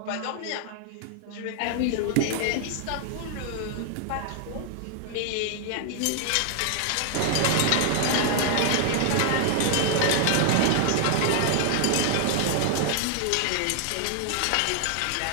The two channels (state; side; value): different; both; correlation 0.00